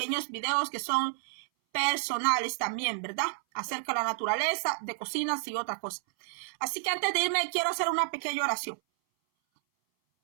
videos que son personales también, ¿verdad? Acerca de la naturaleza, de cocinas y otras cosas. Así que antes de irme, quiero hacer una pequeña oración.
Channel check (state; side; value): silent; left; 58 dB below the other